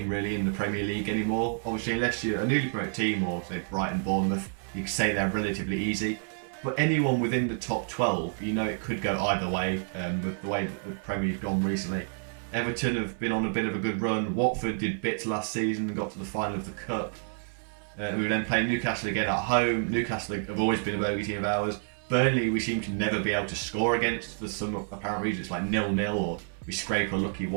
really in the Premier League anymore. Obviously, unless you're a newly promoted team or say Brighton, Bournemouth, you can say they're relatively easy. But anyone within the top 12, you know it could go either way with the way that the Premier League's gone recently. Everton have been on a bit of a good run. Watford did bits last season and got to the final of the Cup. We were then playing Newcastle again at home. Newcastle have always been a bogey team of ours. Burnley we seem to never be able to score against for some apparent reason. It's like 0-0 or we scrape a lucky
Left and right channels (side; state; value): left; silent; 57 dB below the other